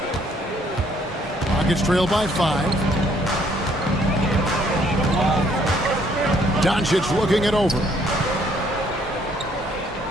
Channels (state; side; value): normal; both; correlation 0.65